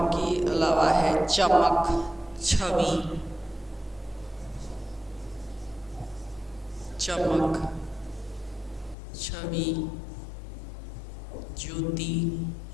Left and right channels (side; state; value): right; drops out; at 9.0 s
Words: के अलावा है चमक, छवि, चमक, छवि, ज्योति